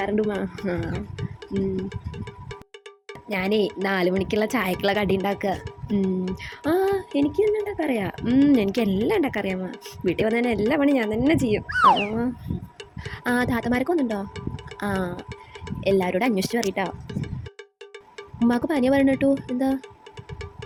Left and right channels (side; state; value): both; identical; correlation 1.00